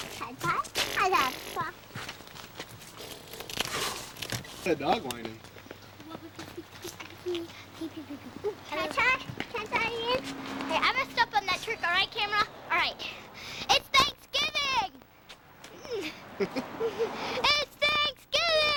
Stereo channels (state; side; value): identical; both; correlation 1.00